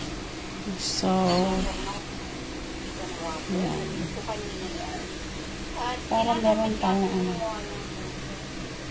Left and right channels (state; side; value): identical; both; correlation 1.00